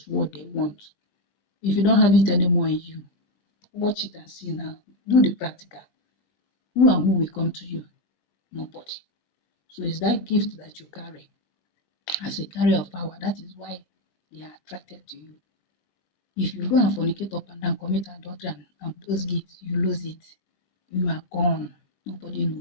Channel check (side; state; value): right; late; 21 ms